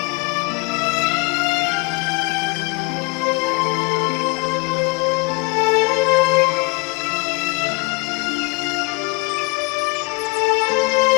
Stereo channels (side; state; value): right; quieter; 27.3 dB